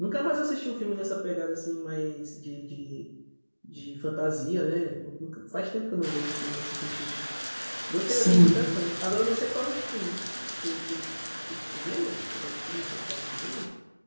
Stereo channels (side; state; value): both; inverted; correlation -1.00